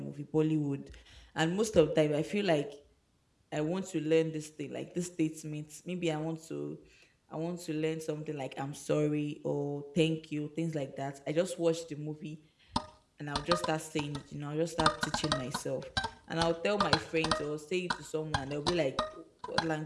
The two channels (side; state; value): both; identical; correlation 1.00